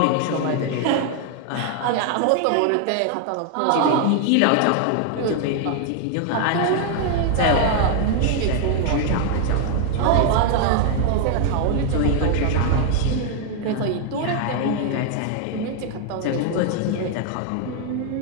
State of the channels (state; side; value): different; both; correlation 0.00